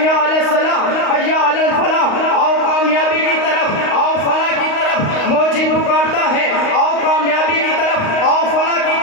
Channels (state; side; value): late; right; 35 ms